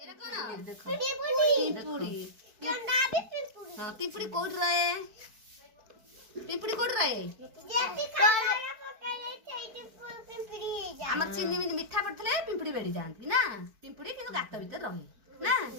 ଏଇଟା କଣ? ପିମ୍ପୁଡି। ହଁ ପିମ୍ପୁଡି କୋଉଠି ରହେ? ପିମ୍ପୁଡି କୋଉଠି ରହେ? ଆମର ଚିନି ମିଠା ପଡିଥିଲେ ପିମ୍ପୁଡି ବେଡି ଯାଆନ୍ତି ନା ପିମ୍ପୁଡି କିନ୍ତୁ ଗାତ ଭିତରେ ରହେ ନା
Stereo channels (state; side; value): late; left; 4.5 ms